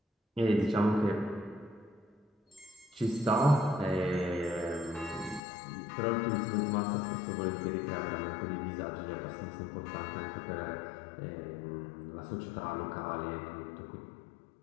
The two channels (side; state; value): right; drops out; at 5.4 s